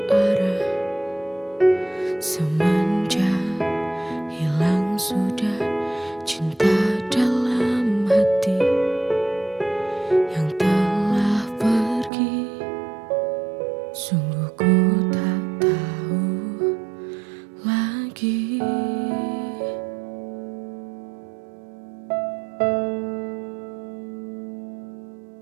arah. Semenjak hilang sudah cinta dalam hati yang telah pergi. Sungguh ku tak tahu lagi.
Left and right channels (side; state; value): left; drops out; at 12.1 s